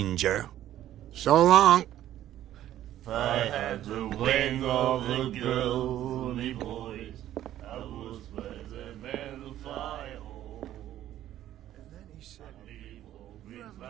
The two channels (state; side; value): quieter; left; 12.6 dB